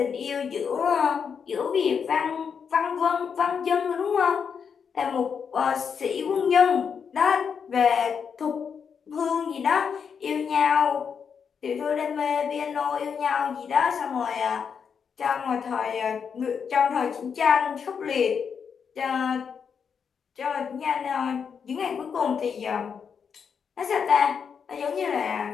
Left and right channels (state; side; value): quieter; right; 6.7 dB